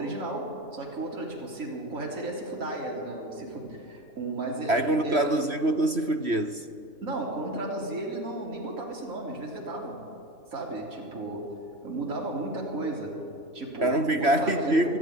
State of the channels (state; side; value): late; left; 3.1 ms